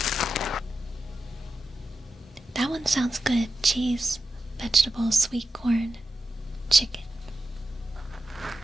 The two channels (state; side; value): normal; both; correlation 0.90